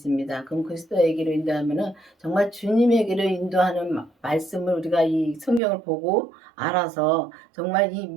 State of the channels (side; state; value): left; drops out; at 5.6 s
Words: 그럼 그리스도에게로 인도하면은 정말 주님에게로 인도하는 말씀을 우리가 이 성경을 보고 알아서 정말 이